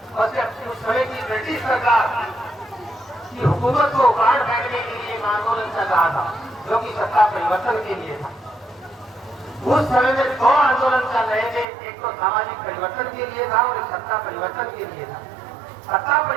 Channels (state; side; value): drops out; left; at 11.7 s